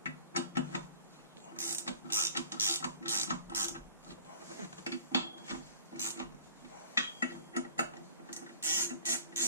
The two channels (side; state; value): both; inverted; correlation -0.46